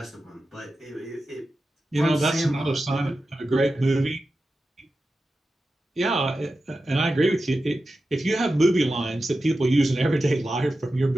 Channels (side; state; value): both; normal; correlation 0.92